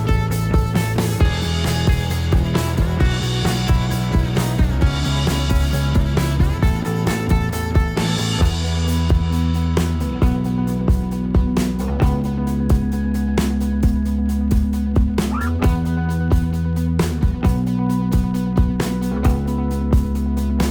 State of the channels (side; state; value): both; identical; correlation 1.00